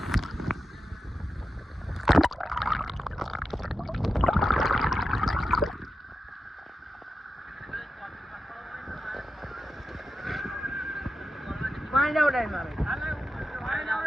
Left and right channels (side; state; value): both; normal; correlation 0.90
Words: પાણી જાવ ડાય મારે